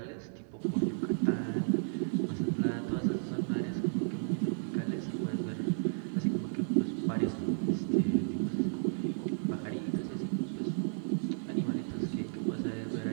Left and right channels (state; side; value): silent; left; digital silence